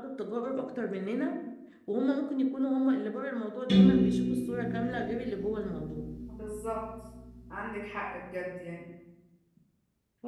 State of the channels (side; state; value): both; identical; correlation 1.00